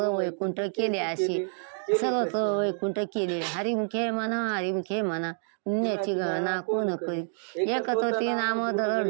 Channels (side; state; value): left; silent; digital silence